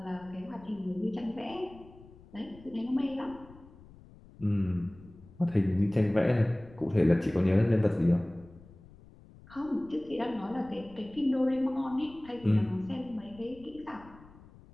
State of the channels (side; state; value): left; noise; rumble, 22 dB below the sound